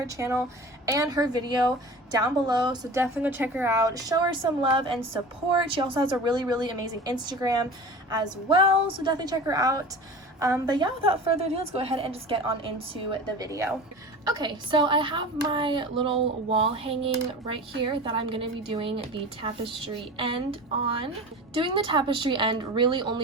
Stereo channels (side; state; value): both; normal; correlation 0.35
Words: channel and her video down below, so definitely go check her out. Show her some love and support. She also has a really amazing Instagram as well, so definitely check her out. But yeah, without further ado, let's go ahead and just get on into the video. Okay, so I have my little wall hanging right here that I'm going to be doing the tapestry end on. Doing the tapestry end really